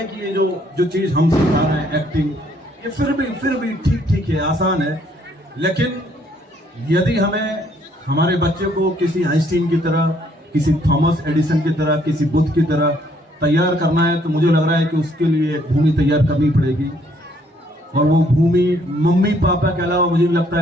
कि ये जो चीज हम सिखा रहे हैं, एक्टिंग, ये फिर भी ठीक है, आसान है। लेकिन यदि हमें हमारे बच्चे को किसी आइंस्टीन की तरह, किसी थॉमस एडिसन की तरह, किसी बुद्ध की तरह तैयार करना है, तो मुझे लग रहा है कि उसके लिए एक भूमि तैयार करनी पड़ेगी। और वो भूमि मम्मी पापा के अलावा मुझे लगता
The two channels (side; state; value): both; normal; correlation 0.66